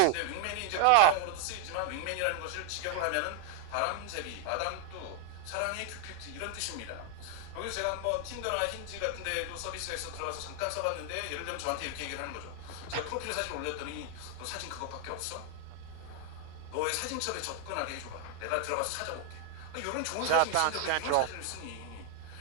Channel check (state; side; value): different; both; correlation 0.00